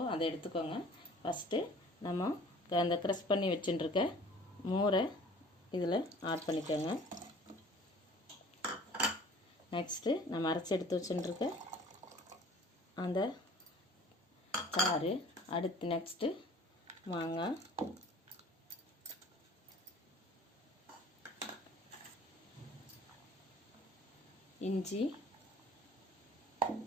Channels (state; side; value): normal; both; correlation 0.49